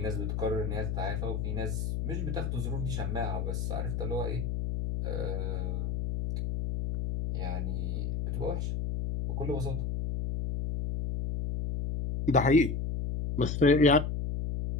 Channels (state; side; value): noise; left; hum, 1 dB below the sound